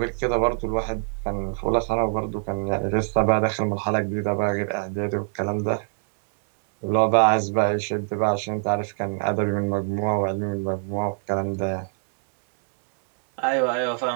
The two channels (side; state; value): left; silent; digital silence